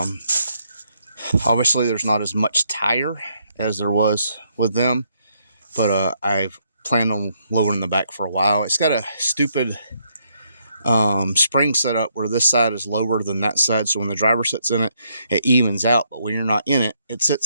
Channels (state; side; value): inverted; both; correlation -0.74